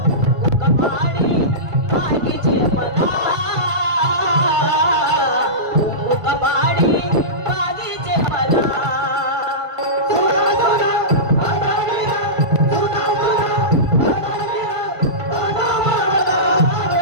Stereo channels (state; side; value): late; left; 1.5 ms